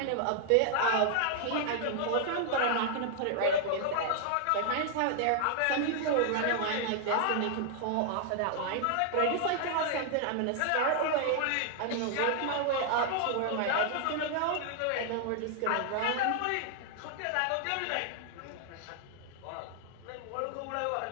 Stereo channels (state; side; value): different; both; correlation 0.00